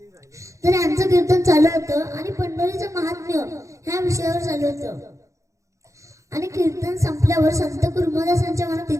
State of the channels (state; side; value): late; left; 0.15 ms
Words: तर यांचं कीर्तन चालू होतं आणि पंढरीचं महात्म्य ह्या विषयावर चालू होतं. आणि कीर्तन संपल्यावर संत कुर्मदासांच्या मनात